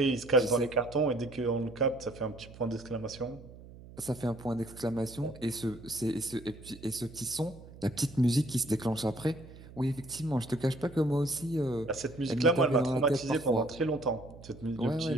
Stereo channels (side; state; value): right; noise; hum, 18 dB below the sound